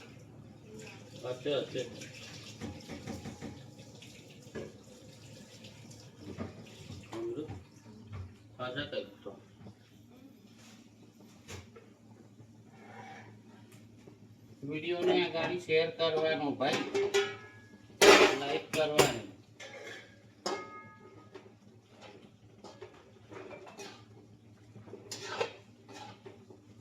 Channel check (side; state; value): both; identical; correlation 1.00